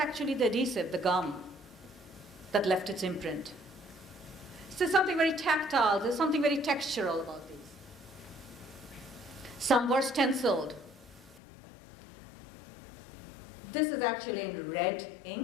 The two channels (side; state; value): right; drops out; at 11.4 s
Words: the adhesive, the gum, that left its imprint. So there's something very tactile, there's something very textural about these. Some were stenciled. This is actually in red